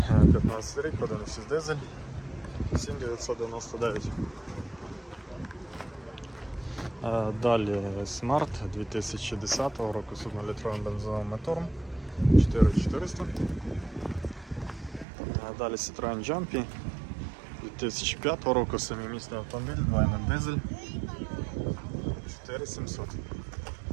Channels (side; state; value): left; drops out; at 15.1 s